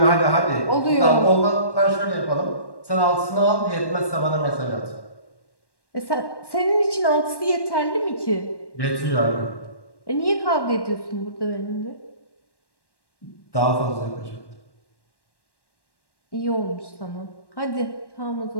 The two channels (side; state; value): right; late; 1.1 ms